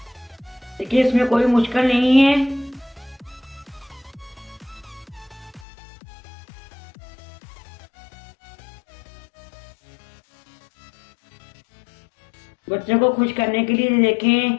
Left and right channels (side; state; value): right; drops out; at 5.7 s